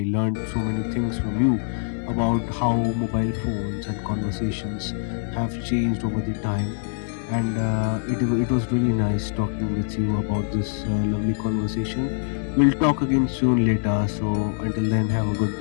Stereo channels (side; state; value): right; silent; 58 dB below the other